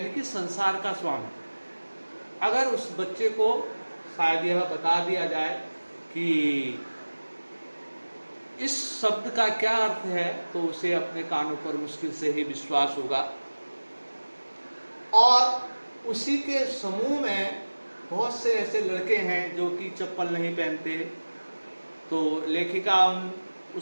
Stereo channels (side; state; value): both; inverted; correlation -1.00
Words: कि संसार का स्वामी। अगर उस बच्चे को शायद यह बता दिया जाए कि इस शब्द का क्या अर्थ है तो उसे अपने कानों पर मुश्किल से ही विश्वास होगा। और उसी के समूह में बहुत से ऐसे लड़के हैं जो कि चप्पल नहीं पहनते। तो लेखिका उन